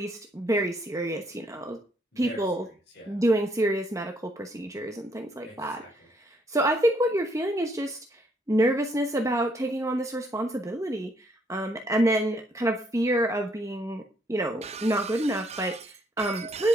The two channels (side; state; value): both; normal; correlation 0.70